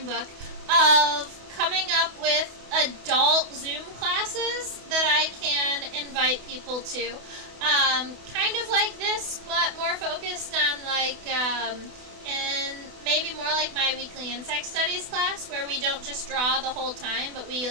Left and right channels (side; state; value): left; late; 28 ms